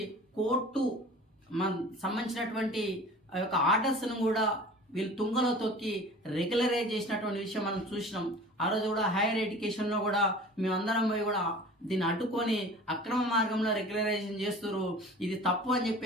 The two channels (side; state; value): both; normal; correlation 0.42